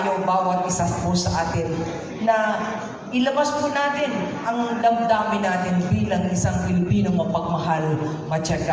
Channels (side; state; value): both; identical; correlation 1.00